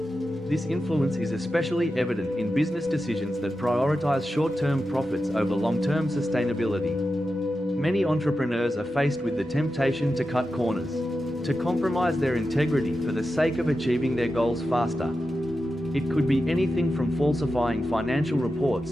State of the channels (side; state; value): both; normal; correlation 0.91